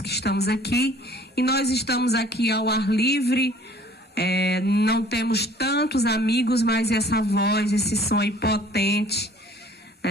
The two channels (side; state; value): both; normal; correlation 0.53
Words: que estamos aqui, e nós estamos aqui ao ar livre. Não temos tantos amigos, mas essa voz, esse som aí potente,